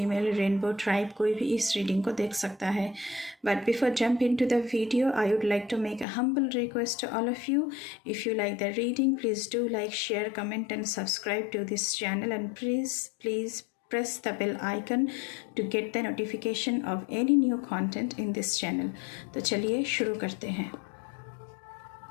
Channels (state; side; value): drops out; right; at 6.1 s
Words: rainbow tribe, कोई भी इस रीडिंग को देख सकता है। But before jump into the video, I would like to make a humble request to all of you. If you like the reading, please do like, share, comment and subscribe to this channel, and please press the bell icon to get the notification of any new content in this channel. तो चलिए शुरू करते हैं।